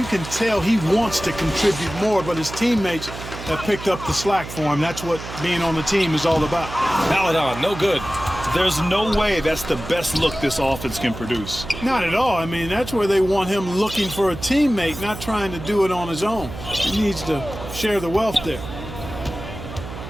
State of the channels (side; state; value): right; noise; hum, 11 dB below the sound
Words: can tell he wants to contribute more, but his teammates have picked up the slack for him. That's what being on the team is all about. Maladon, no good. There's no way that's the best look this offense can produce. Not at all. I mean, that's where they want him looking for a teammate, not trying to do it on his own. He needs to share the wealth there.